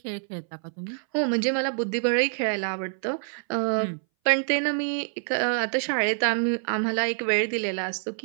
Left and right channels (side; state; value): left; silent; 60 dB below the other